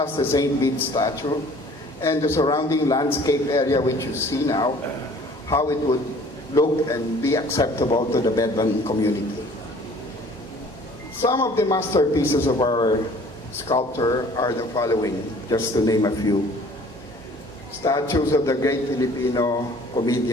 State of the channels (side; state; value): both; normal; correlation 0.52